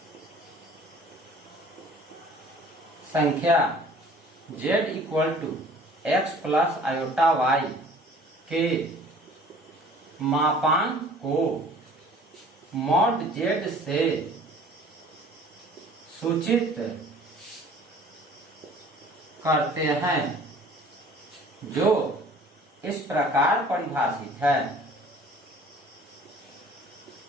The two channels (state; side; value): normal; both; correlation 0.50